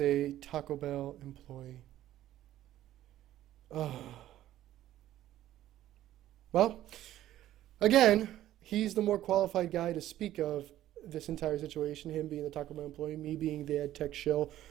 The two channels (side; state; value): left; quieter; 13.3 dB